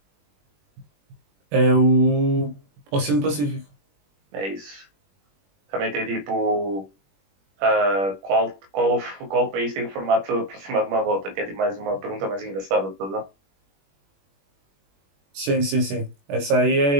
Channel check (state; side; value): late; left; 21 ms